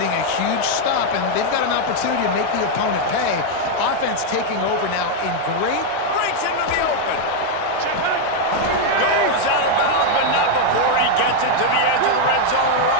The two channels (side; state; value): both; different; correlation 0.00